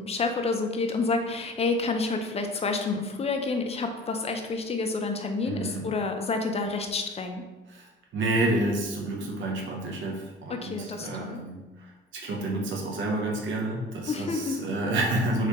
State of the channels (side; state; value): both; normal; correlation 0.41